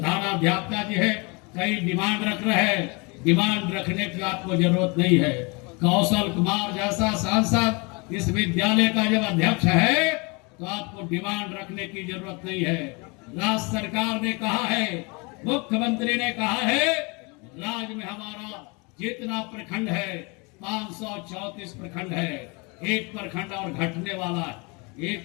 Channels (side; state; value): right; quieter; 29.5 dB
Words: जी है, कई डिमांड रख रहे हैं। डिमांड रखने की आपको जरूरत नहीं है। कौशल कुमार जैसा सांसद इस विद्यालय का जब अध्यक्ष है तो आपको डिमांड रखने की जरूरत नहीं है। राज्य सरकार ने कहा है, मुख्यमंत्री ने कहा है, राज्य में हमारा जितना प्रखंड है 534 प्रखंड है। एक प्रखंड और घटने वाला है,